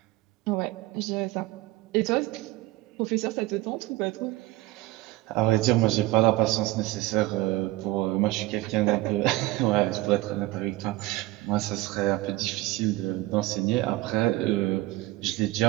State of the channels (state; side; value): quieter; left; 18.5 dB